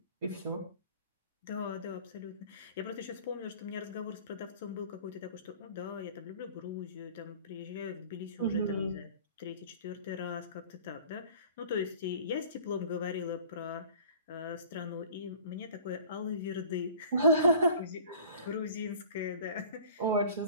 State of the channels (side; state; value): both; inverted; correlation -0.46